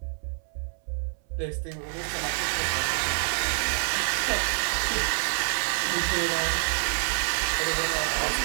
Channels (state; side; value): silent; left; 60 dB below the other